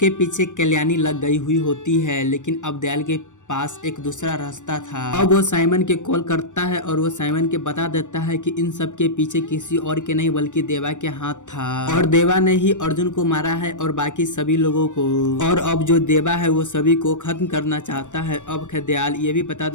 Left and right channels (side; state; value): right; late; 0.85 ms